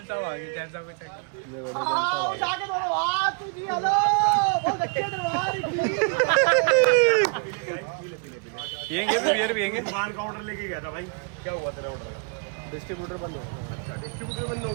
साहब आ गए, जैन साहब को चेक करो। पियेंगे भी, बियर पियेंगे। दुकान का ऑर्डर लेके गया था भाई, क्या हुआ तेरे ऑर्डर का? डिस्ट्रीब्यूटर बंद हो गया। डिस्ट्रीब्यूटर बंद हो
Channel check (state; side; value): quieter; left; 37.1 dB